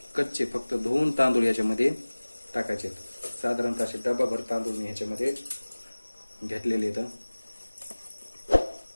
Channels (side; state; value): both; inverted; correlation -1.00